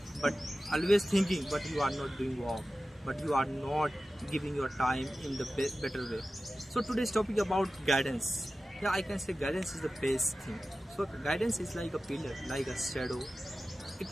But always thinking, but you are not doing work, but you are not giving your time in the better way. So today's topic about guidance. Yeah, I can say guidance is the best thing. So guidance is like a pillar, like a shadow. It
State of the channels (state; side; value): normal; both; correlation 0.95